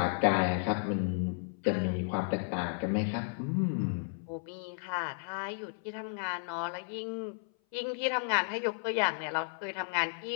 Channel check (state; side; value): silent; right; 56 dB below the other